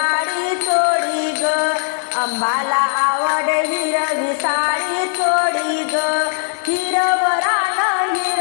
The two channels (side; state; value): right; silent; 60 dB below the other